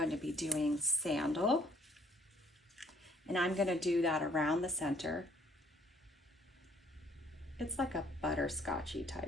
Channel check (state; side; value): normal; both; correlation 0.62